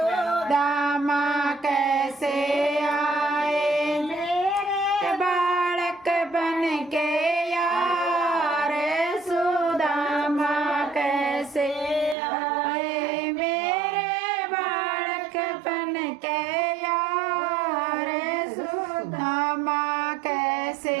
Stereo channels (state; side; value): drops out; left; at 12.2 s